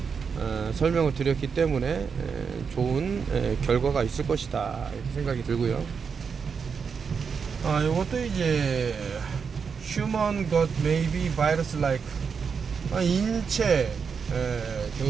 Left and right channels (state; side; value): quieter; left; 6.0 dB